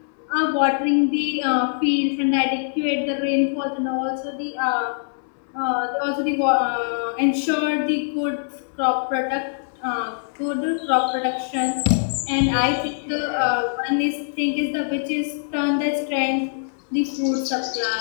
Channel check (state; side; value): silent; right; digital silence